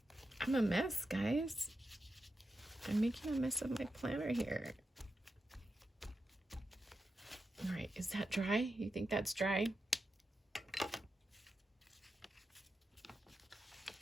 I'm a mess, guys. I'm making a mess of my planner here. All right, is that dry? You think that's dry?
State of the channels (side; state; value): both; normal; correlation 0.89